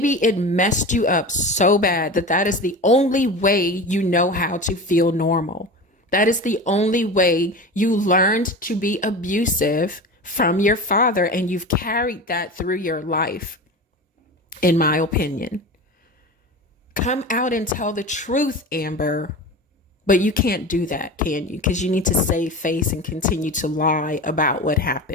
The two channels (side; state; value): both; normal; correlation 0.30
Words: it messed you up so bad that is the only way you know how to feel normal. That is the only way you learned to be abusive from your father, and you've carried that through your life, in my opinion. Come out and tell the truth, Amber. But you can't do that, can you? Because you need to save face and continue to lie about what